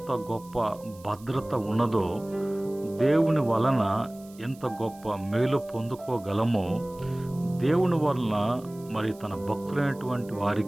గొప్ప భద్రత ఉన్నదో, దేవుని వలన ఎంత గొప్ప మేలు పొందుకోగలమో, దేవుని వలన మరి తన భక్తులైనటువంటి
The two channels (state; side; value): noise; right; hiss, 24 dB below the sound